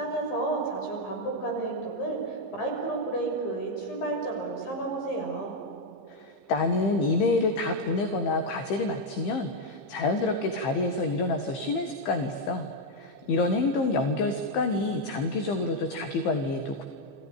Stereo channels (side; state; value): right; late; 15 ms